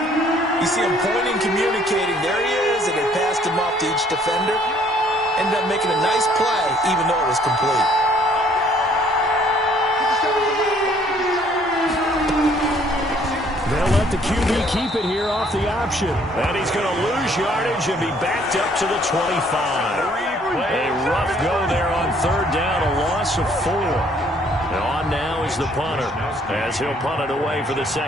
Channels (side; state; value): both; normal; correlation 0.62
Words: you see him pointing, communicating. There he is, and they passed him off to each defender. Ended up making a nice play, even though it was complete. They'll let the QB keep it here off the option. And he's going to lose yardage and be backed up to the 25. A rough go there on 3rd down, a loss of 4. On now is the punter as he'll punt it away for the